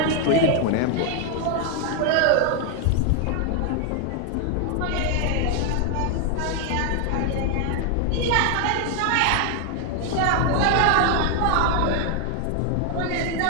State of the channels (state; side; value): different; both; correlation 0.00